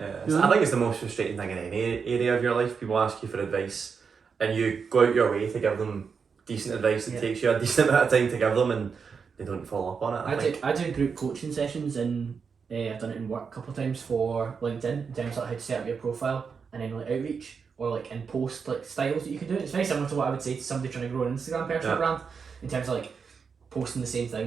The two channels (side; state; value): left; quieter; 5.8 dB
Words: I think it's the most frustrating thing in any area of your life. People ask you for advice and you go out your way to give them decent advice. It takes you a decent amount of time to give them and they don't follow up on it. I do group coaching sessions and I've done it in work a couple of times for LinkedIn in terms of how to set up your profile and then like outreach or like in post like styles that you can do. It's very similar to what I would say to somebody trying to grow an Instagram personal brand in terms of like posting the same